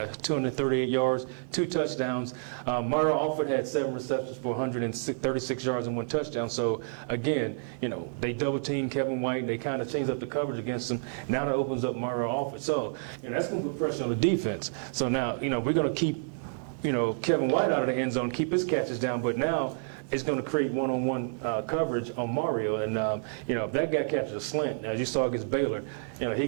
238 yards, 2 touchdowns. Mario Alford had 7 receptions for 136 yards and 1 touchdown. So again, you know, they double teamed Kevin White and they kind of changed up the coverage against him. Now that opens up Mario Alford. So that's going to put pressure on the defense. So now, you know, we're going to keep, you know, Kevin White out of the end zone, keep his catches down, but now it's going to create one-on-one coverage on Mario. And, if that guy catches a slant, as you saw against Baylor, you know, he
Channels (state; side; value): silent; left; digital silence